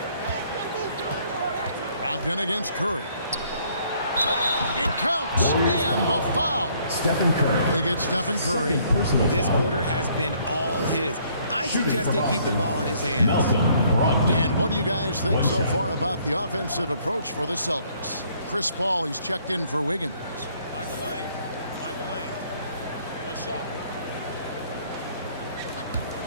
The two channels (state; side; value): inverted; both; correlation -0.64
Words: Brogdon against Curry. It counts. And the foul. Stephen Curry. They get Stephen Curry. This quarter has been all his. I suggest they keep the ball in his hands. Malcolm Brogdon. And what do you guys think so far about the offensive approach for the Celtics? Chris Paul, he's checked in for Wiggins. Find the lane. Find the lane. One shot.